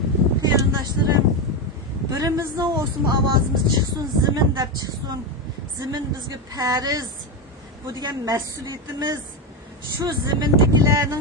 Qarindoshlarım, birimizning olsun avazımız çıksın, zimin dep çıksın. Zimin bizge fariz. Bu degan mas'uliyatimiz. Şu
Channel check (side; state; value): both; normal; correlation 0.12